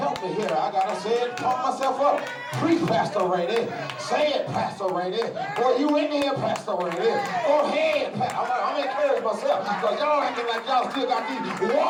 me here. I gotta say it, pump myself up. Preach, Pastor Rainey. Say it, Pastor Rainey. Boy, you in here, Pastor Rainey. Go ahead, I'm encouraging myself because y'all acting like y'all still got these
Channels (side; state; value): both; identical; correlation 1.00